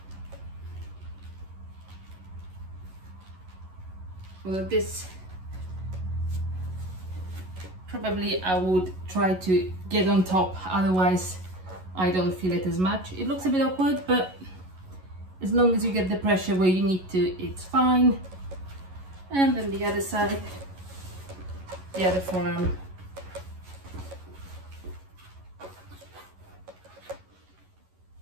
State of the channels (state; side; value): late; left; 11 ms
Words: Well, this probably I would try to get on top, otherwise I don't feel it as much. It looks a bit awkward, but as long as you get the pressure where you need to, it's fine. And then the other side, the other forearm.